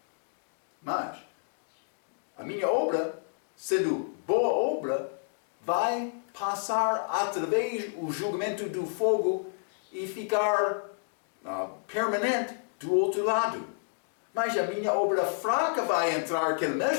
Mas a minha obra, sendo boa obra, vai passar através do julgamento do fogo e ficar permanente do outro lado. Mas a minha obra fraca vai entrar naquele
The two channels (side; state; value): right; silent; digital silence